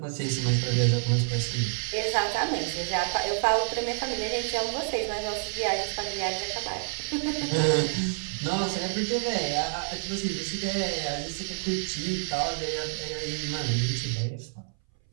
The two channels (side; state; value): left; silent; 59 dB below the other